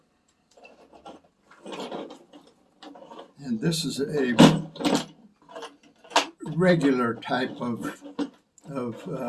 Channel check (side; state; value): both; identical; correlation 1.00